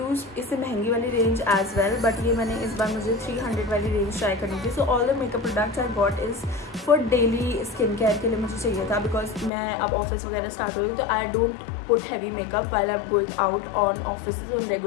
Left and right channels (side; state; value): right; drops out; at 9.5 s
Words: इससे महंगी वाली रेंज as well, but ये मैंने इस बार मुझे 300 वाली रेंज ट्राई करनी थी। So all the makeup products I got is for daily skin care के लिए मुझे चाहिए था, because मैं अब ऑफिस वगैरह स्टार्ट हो रही हूँ तो I don't put heavy makeup while I'm going out on offices on